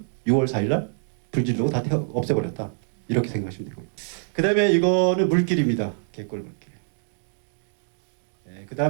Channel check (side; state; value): left; silent; digital silence